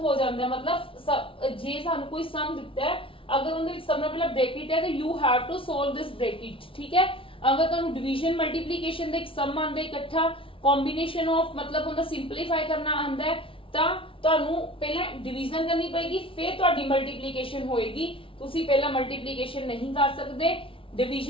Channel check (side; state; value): right; late; 0.26 ms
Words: ਜਾਂਦਾ ਹੈ। ਮਤਲਬ ਜੇ ਸਾਨੂੰ ਕੋਈ ਸਮ ਦਿੱਤਾ ਹੈ, ਅਗਰ ਉਹਦੇ ਵਿੱਚ ਸਮ ਨਾਲ ਪਹਿਲਾਂ ਬ੍ਰੈਕਟ ਹੈ ਤਾਂ you have to solve this bracket. ਠੀਕ ਹੈ, ਅਗਰ ਤੁਹਾਨੂੰ ਡਿਵੀਜ਼ਨ ਮਲਟੀਪਲੀਕੇਸ਼ਨ ਦਾ ਇੱਕ ਸਮ ਆਂਦਾ ਇਕੱਠਾ कॉम्बिनेशन ऑफ मतलब उनका सिंपलीफाई करना आंदा है ਤਾਂ ਤੁਹਾਨੂੰ ਪਹਿਲਾਂ ਡਿਵੀਜ਼ਨ ਕਰਨੀ ਪਏਗੀ, ਫਿਰ ਤੁਹਾਡੀ ਮਲਟੀਪਲੀਕੇਸ਼ਨ ਹੋਏਗੀ। ਤੁਸੀਂ ਪਹਿਲਾਂ ਮਲਟੀਪਲੀਕੇਸ਼ਨ ਨਹੀਂ ਕਰ ਸਕਦੇ,